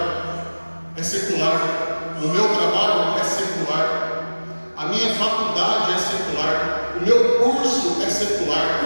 é secular, o meu trabalho é secular, a minha faculdade é secular, o meu curso é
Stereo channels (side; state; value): both; inverted; correlation -1.00